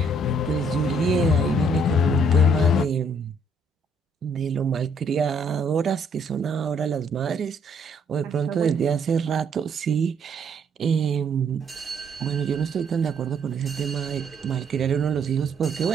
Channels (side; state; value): both; normal; correlation 0.67